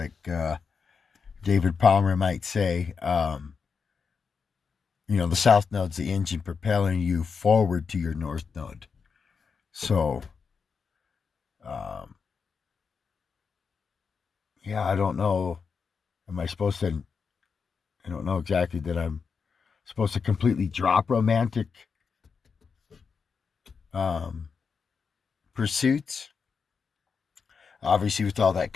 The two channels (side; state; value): right; quieter; 5.6 dB